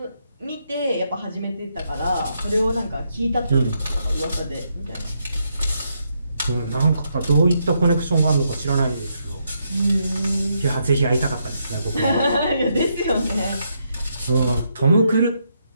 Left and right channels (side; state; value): both; inverted; correlation -0.78